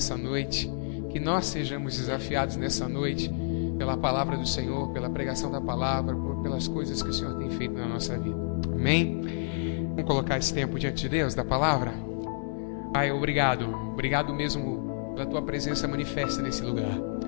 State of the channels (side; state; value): right; silent; 58 dB below the other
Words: noite, que nós sejamos desafiados nessa noite pela palavra do Senhor, pela pregação da palavra, pelas coisas que o Senhor tem feito na nossa vida. Amém? Vamos colocar esse tempo diante de Deus, da palavra? Pai, obrigado. Obrigado mesmo pela Tua presença manifesta nesse lugar.